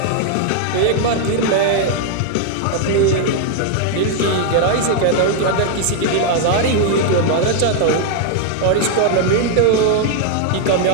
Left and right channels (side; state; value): both; different; correlation 0.00